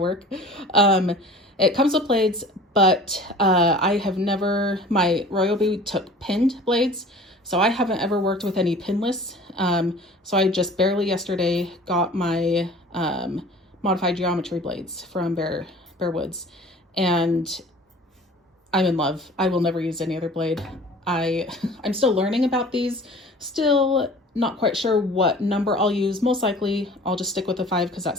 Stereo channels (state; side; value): normal; both; correlation 0.45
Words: It comes with blades, but I have never, my Ryobi took pinned blades, so I haven't ever worked with any pinless. So I just barely yesterday got my modified geometry blades from Bear Woods, and I'm in love. I will never use any other blade. I'm still learning about these, still not quite sure what number I'll use. Most likely I'll just stick with the 5 because that